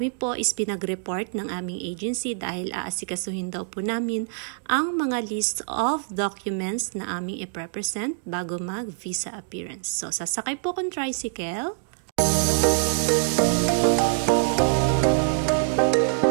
po is pinag-report ng aming agency dahil aasikasuhin daw po namin ang mga list of documents na aming i-represent bago mag-visa appearance. So sasakay po akong tricycle.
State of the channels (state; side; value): silent; left; digital silence